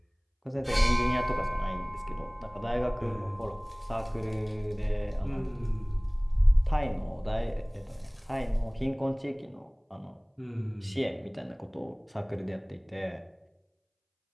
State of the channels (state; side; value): identical; both; correlation 1.00